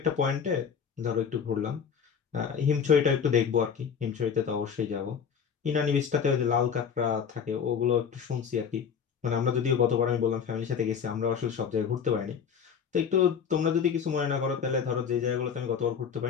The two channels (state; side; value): quieter; right; 7.1 dB